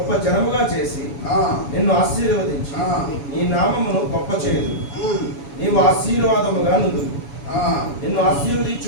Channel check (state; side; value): late; right; 7.1 ms